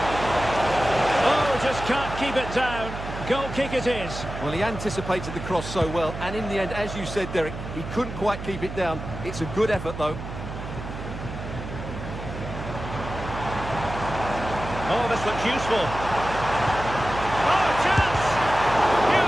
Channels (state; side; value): noise; right; hum, 9 dB below the sound